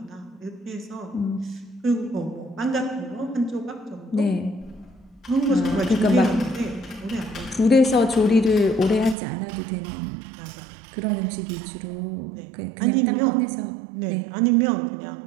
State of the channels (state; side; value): drops out; left; at 9.2 s